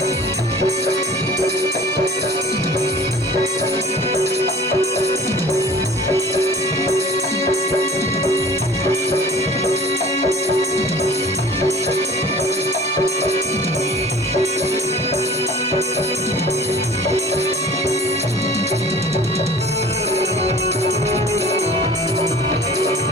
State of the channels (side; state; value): both; normal; correlation 0.45